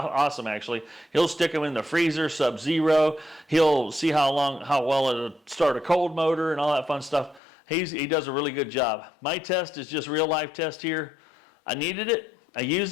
actually. He'll stick them in the freezer, sub-zero. He'll see how well it'll start a cold motor and all that fun stuff. He does a really good job. My test is just real life test here. I needed it. I used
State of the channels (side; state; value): right; drops out; at 7.4 s